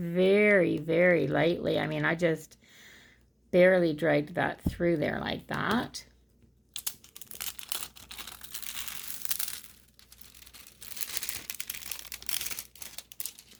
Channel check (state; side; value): identical; both; correlation 1.00